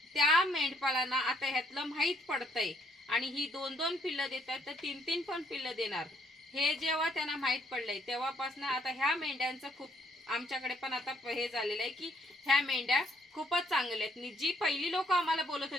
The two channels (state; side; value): normal; both; correlation 0.69